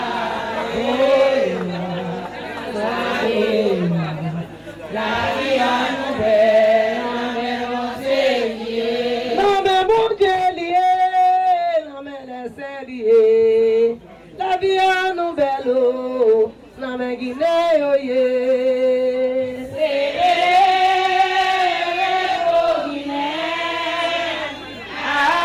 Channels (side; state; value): both; identical; correlation 1.00